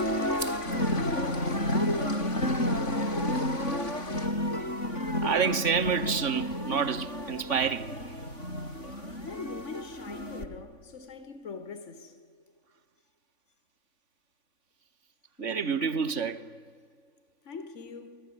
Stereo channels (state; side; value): late; right; 3.5 ms